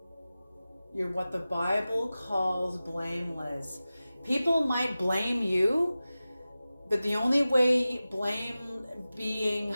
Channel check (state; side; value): inverted; both; correlation -0.96